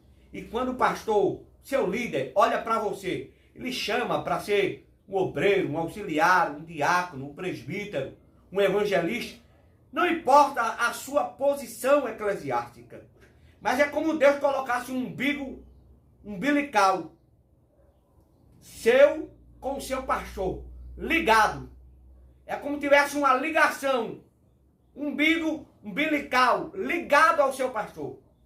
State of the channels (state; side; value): identical; both; correlation 1.00